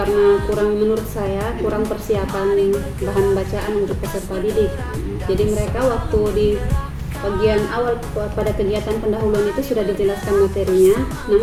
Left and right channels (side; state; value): both; identical; correlation 1.00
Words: menurut saya kurang persiapan bahan bacaan untuk peserta didik. Jadi mereka waktu di bagian awal pada kegiatan pendahuluan itu sudah dijelaskan materinya,